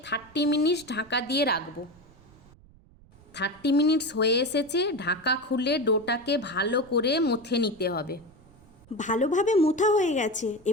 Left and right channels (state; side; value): noise; right; rumble, 26 dB below the sound